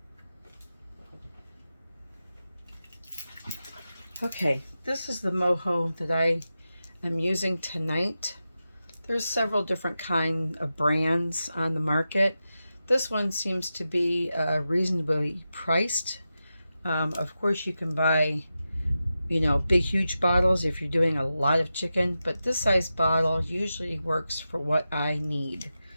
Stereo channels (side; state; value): both; inverted; correlation -0.91